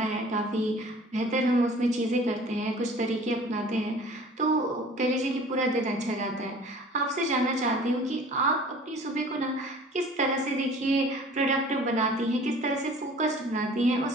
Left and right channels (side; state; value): both; normal; correlation 0.47